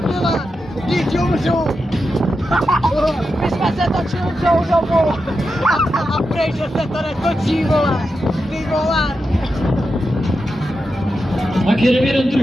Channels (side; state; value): both; normal; correlation 0.88